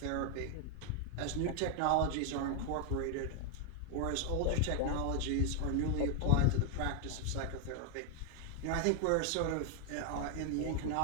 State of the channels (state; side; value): different; both; correlation 0.00